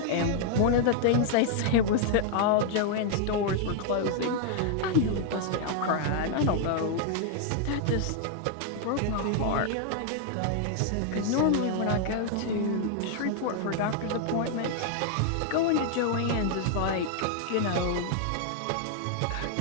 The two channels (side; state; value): both; different; correlation 0.00